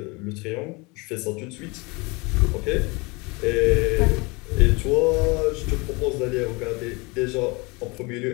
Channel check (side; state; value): right; quieter; 26.9 dB